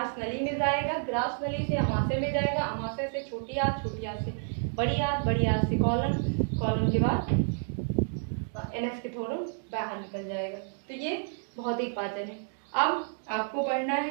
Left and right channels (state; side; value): silent; left; 58 dB below the other